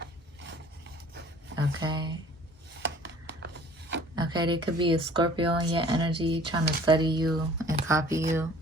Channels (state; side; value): normal; both; correlation 0.51